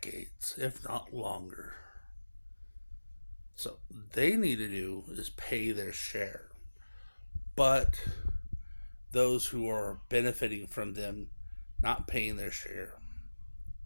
if not longer. So they need to do is pay their share. But those who are benefiting from them not paying their share,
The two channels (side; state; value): both; inverted; correlation -1.00